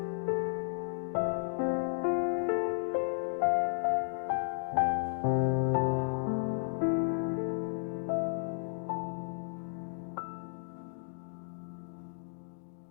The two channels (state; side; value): silent; right; digital silence